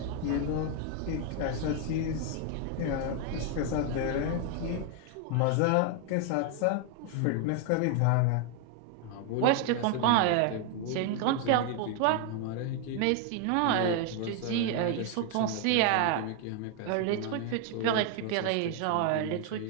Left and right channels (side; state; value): both; different; correlation 0.01